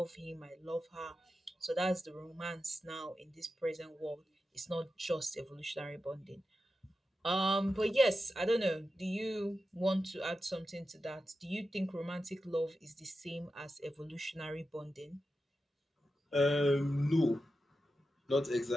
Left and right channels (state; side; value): normal; both; correlation 0.91